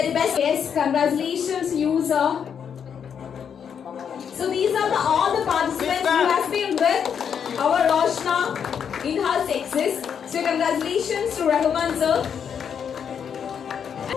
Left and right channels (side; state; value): right; quieter; 7.6 dB